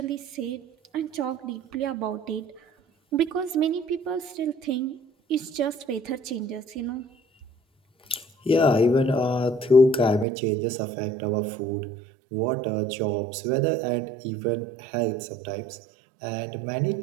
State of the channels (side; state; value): left; drops out; at 10.2 s